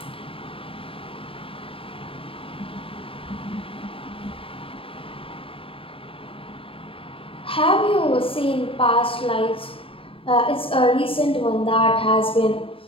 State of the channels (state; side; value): late; right; 0.26 ms